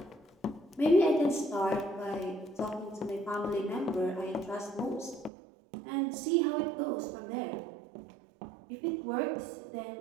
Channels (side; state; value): left; drops out; at 5.3 s